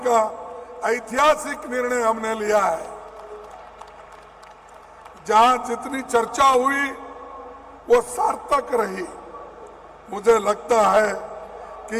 का ऐतिहासिक निर्णय हमने लिया है। जहां जितनी चर्चा हुई वो सार्थक रही। मुझे लगता है कि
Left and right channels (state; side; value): identical; both; correlation 1.00